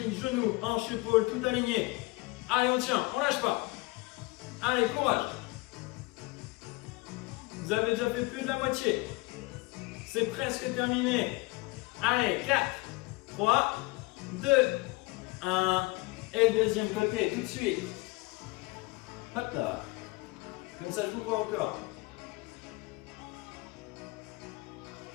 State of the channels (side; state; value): right; quieter; 23.4 dB